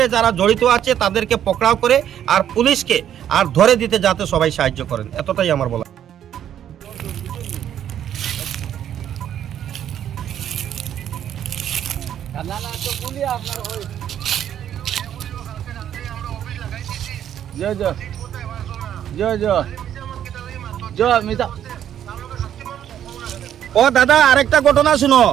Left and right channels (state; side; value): quieter; left; 10.2 dB